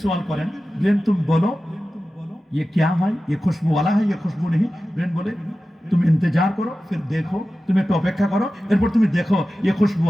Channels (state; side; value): normal; both; correlation 0.94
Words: সওয়াল করেন ব্রেন তুমি বলো ये क्या है ये खुशबू वाला है ये खुशबू नहीं ब्रेन बोले तुम इंतजार करो फिर देखो तुम एक अपेक्षा करो एरपर तुम देखो ये खुशबू